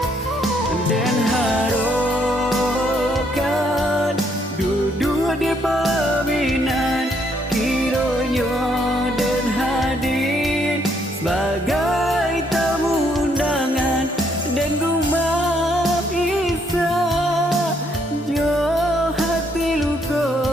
Dan harokan duduk di paminan kiranya dan hadir sebagai tamu undangan. Dan rumah bisa jo hati luka,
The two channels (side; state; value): both; normal; correlation 0.71